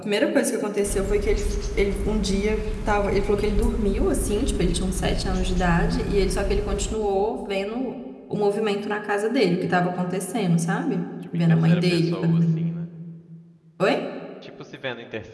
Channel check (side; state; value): both; identical; correlation 1.00